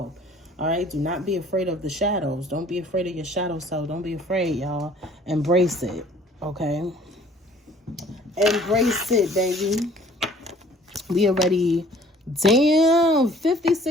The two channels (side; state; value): both; normal; correlation 0.54